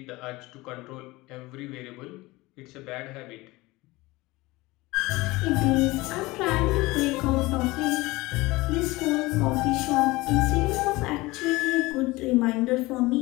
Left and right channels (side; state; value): right; quieter; 21.0 dB